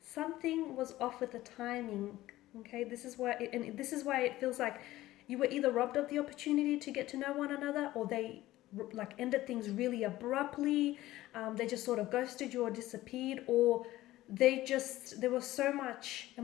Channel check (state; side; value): quieter; right; 16.1 dB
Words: was off with the timing. Okay, this is why it feels like you were either robbed of the opportunity to get to know one another, or they like ended things really abruptly. They just sort of ghosted you or disappeared, or there was so much